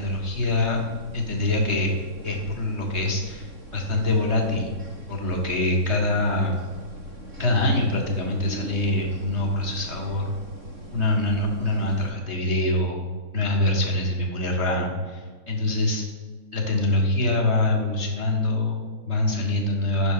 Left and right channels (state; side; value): late; left; 3.6 ms